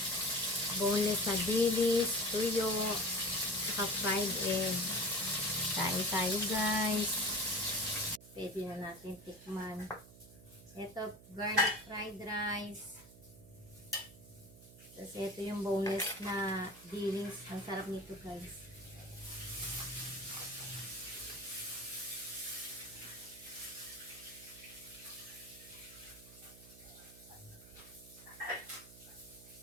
boneless na dilis, tuyo, saka fried egg. Kain tayo guys. Pwede na natin tikman. Ito, garlic fried rice. Tapos ito yung boneless na dilis. Ang sarap nito guys.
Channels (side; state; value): right; noise; hum, 20 dB below the sound